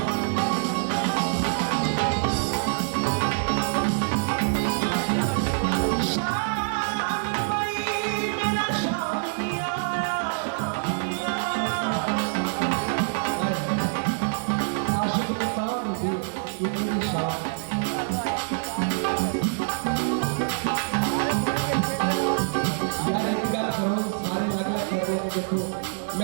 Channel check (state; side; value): silent; left; 61 dB below the other